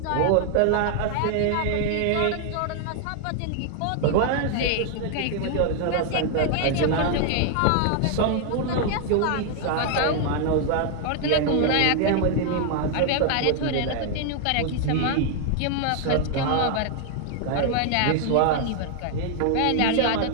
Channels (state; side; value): different; both; correlation 0.00